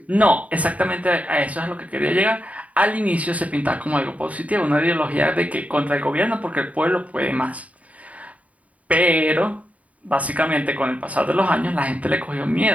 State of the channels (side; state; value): left; late; 0.069 ms